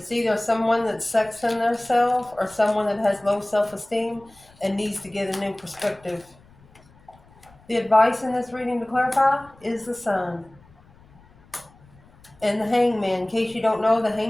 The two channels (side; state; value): left; noise; rumble, 27 dB below the sound